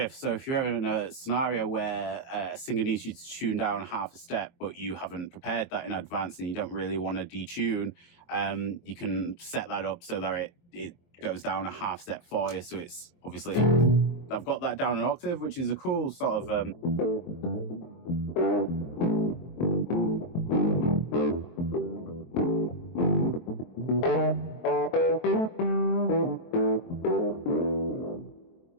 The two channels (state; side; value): late; right; 23 ms